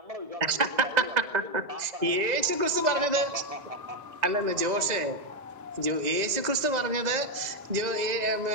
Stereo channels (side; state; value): left; late; 2.0 ms